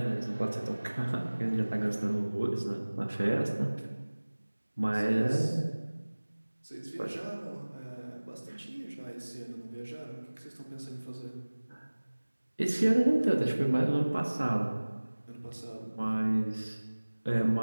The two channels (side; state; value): both; inverted; correlation -1.00